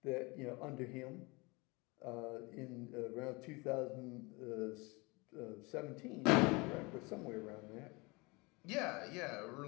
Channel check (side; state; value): right; quieter; 26.3 dB